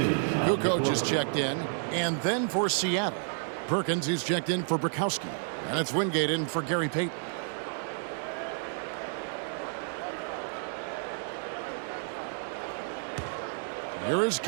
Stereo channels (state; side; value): silent; left; digital silence